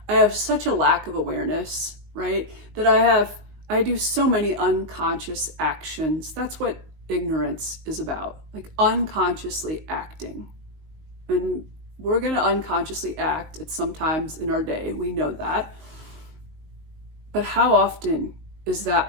I have such a lack of awareness, right? That I do so many unconscious actions. That's what ignorance is about, like unconsciously acting. And we're going to unconsciously act at some times in our day. We know that. But how often is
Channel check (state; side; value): late; left; 19 ms